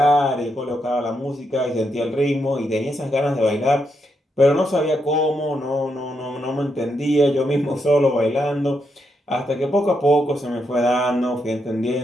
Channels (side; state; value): both; normal; correlation 0.81